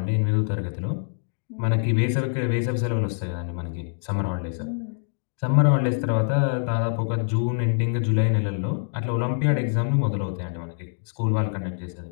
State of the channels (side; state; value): right; silent; digital silence